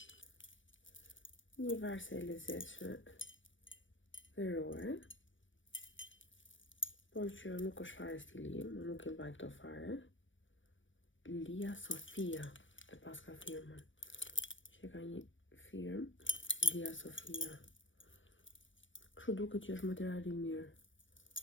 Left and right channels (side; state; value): right; late; 0.56 ms